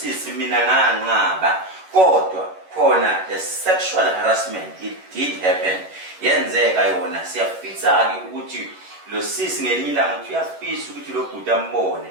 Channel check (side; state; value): left; late; 11 ms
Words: mina nganqaba kodwa khona the sexual harassment it did happen yenzeka yona siyafisa ke ukuthi lo sisi ngelinye ilanga uthi uyafisa ukuthi lo bhuti ambone